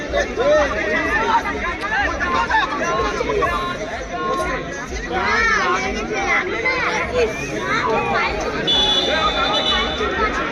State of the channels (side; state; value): both; identical; correlation 1.00